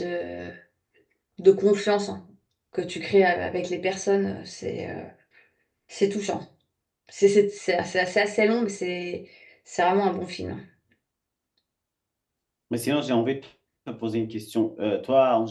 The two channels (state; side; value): identical; both; correlation 1.00